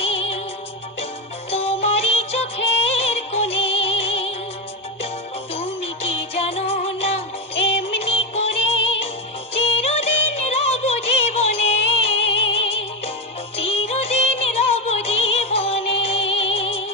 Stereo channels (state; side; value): normal; both; correlation 0.12